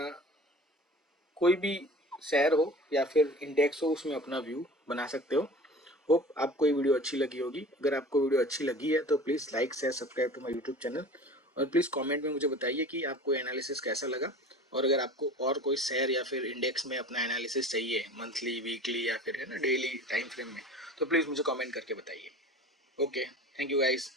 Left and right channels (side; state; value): both; normal; correlation 0.41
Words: कोई भी शेयर हो या फिर इंडेक्स हो उसमें अपना व्यू बना सकते हो। होप आपको ये वीडियो अच्छी लगी होगी। अगर आपको वीडियो अच्छी लगी है तो please like share subscribe to my YouTube channel, और प्लीज़ कमेंट में मुझे बताइए कि आपको एनालिसिस कैसा लगा। और अगर आपको और कोई शेयर या फिर इंडेक्स में अपना एनालिसिस चाहिए मंथली वीकली या फिर है ना डेली टाइम फ्रेम में, तो प्लीज़ मुझे कमेंट करके बताइए। Okay, thank you guys.